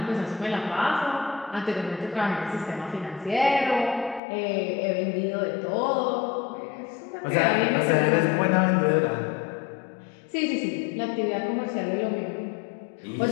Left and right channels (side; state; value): right; drops out; at 4.2 s